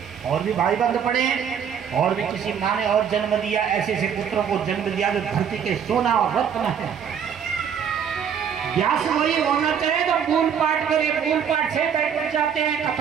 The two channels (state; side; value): quieter; left; 7.8 dB